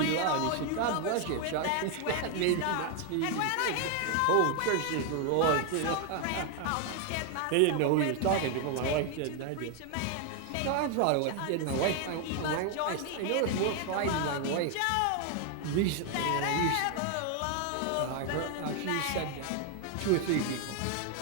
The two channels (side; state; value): both; different; correlation 0.01